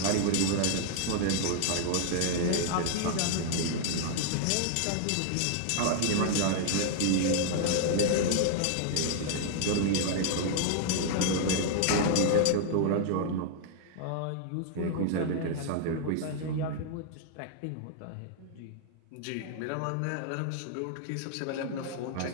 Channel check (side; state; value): both; different; correlation 0.00